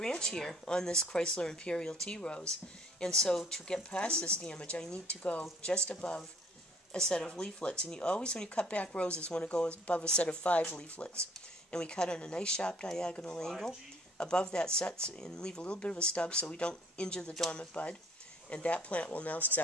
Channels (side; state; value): both; normal; correlation 0.57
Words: here on this Chrysler Imperial Tea Rose. And so to get past this damage, I need to go just above a set of leaflets. And you always, when you cut back roses, want to go above a set of 5 leaflets. And we cut on a nice sharp diagonal angle above that set and leave a little bit of a stub so we don't injure the dormant bud. And that plant will now